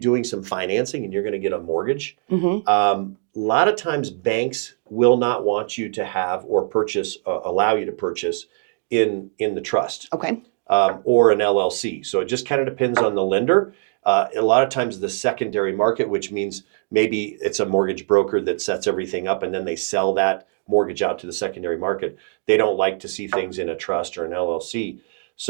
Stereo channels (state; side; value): silent; left; digital silence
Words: some financing and you're going to get a mortgage, a lot of times banks will not want you to have or allow you to purchase in the trust. Okay. Or an LLC. So it just kind of depends on the lender. A lot of times the secondary market, which means maybe it's a mortgage broker that sets everything up and then they sell that mortgage out to the secondary market. They don't like to see things in a trust or an LLC.